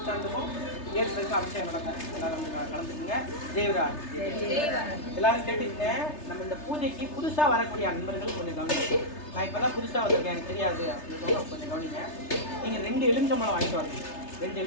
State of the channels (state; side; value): late; right; 3.3 ms